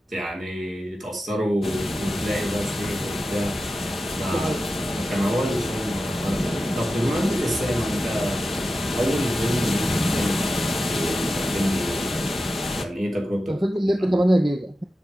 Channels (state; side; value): normal; both; correlation 0.92